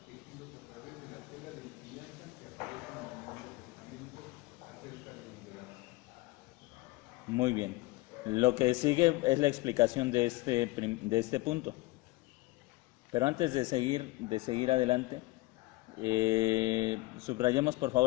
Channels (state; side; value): quieter; right; 20.8 dB